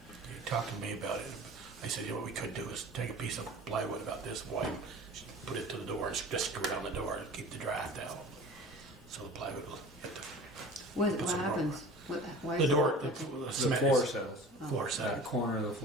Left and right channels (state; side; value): normal; both; correlation 0.40